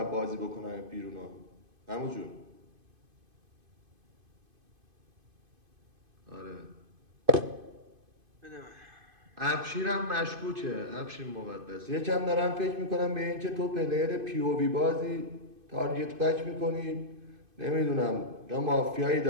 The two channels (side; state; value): left; late; 2.5 ms